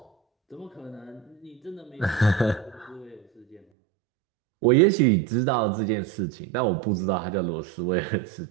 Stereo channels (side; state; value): left; drops out; at 3.6 s